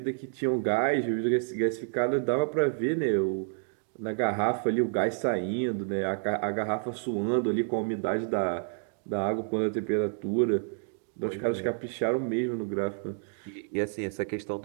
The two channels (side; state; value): left; silent; 58 dB below the other